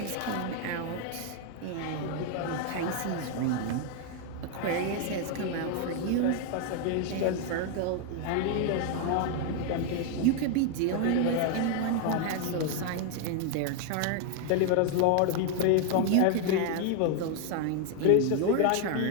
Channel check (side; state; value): both; different; correlation 0.01